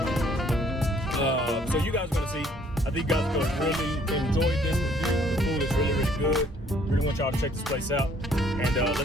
So you guys are going to see. I think you guys are going to really enjoy this review. The food is really, really good. Really want y'all to check this place out. And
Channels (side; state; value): both; normal; correlation 0.61